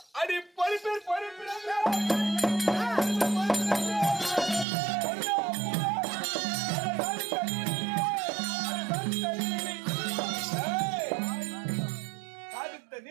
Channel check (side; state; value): left; drops out; at 4.7 s